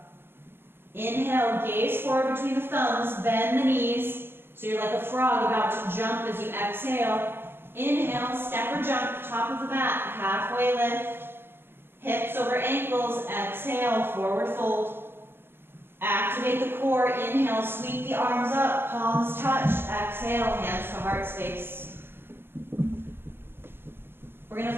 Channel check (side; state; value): left; late; 0.11 ms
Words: Inhale, gaze forward between the thumbs, bend the knees, so you're like a frog about to jump as you exhale. Inhale, step or jump, top of the mat, halfway lift. Hips over ankles, exhale, forward fold. Activate the core. Inhale, sweep the arms up, palms touch. Exhale, hands to heart space. We're going